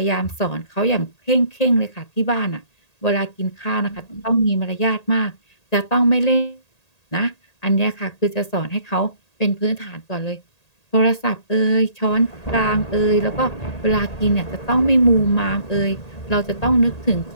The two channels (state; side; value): late; right; 1.8 ms